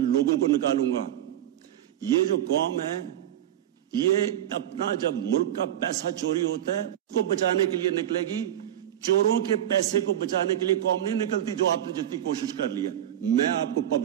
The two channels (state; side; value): quieter; left; 11.6 dB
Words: کو نکالوں گا. یہ جو قوم ہے یہ اپنا جب ملک کا پیسہ چوری ہوتا ہے اس کو بچانے کے لیے نکلے گی. چوروں کے پیسے کو بچانے کے لیے قوم نہیں نکلتی جو آپ نے جتنی کوشش کر لی ہے. میں آپ کو